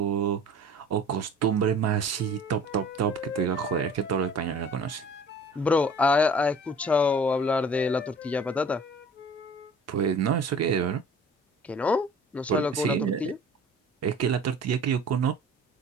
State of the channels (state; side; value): normal; both; correlation 0.46